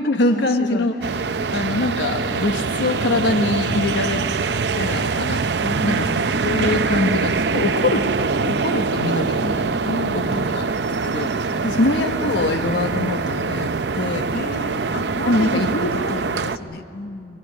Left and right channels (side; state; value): both; normal; correlation 0.23